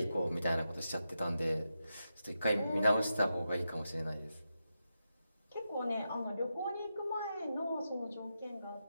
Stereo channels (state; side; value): inverted; both; correlation -0.88